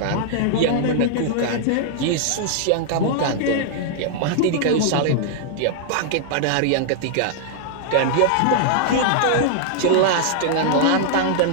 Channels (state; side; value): different; both; correlation -0.01